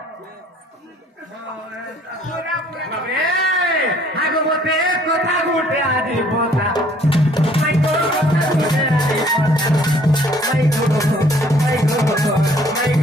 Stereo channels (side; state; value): both; normal; correlation 0.59